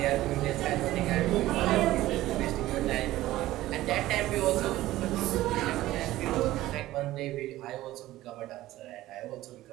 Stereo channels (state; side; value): quieter; left; 15.9 dB